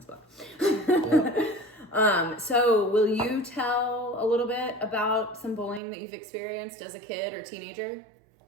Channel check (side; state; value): left; drops out; at 5.8 s